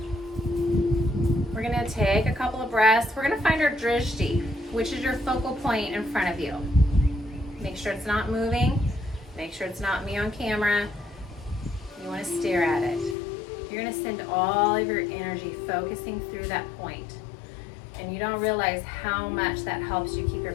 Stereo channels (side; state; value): right; drops out; at 13.2 s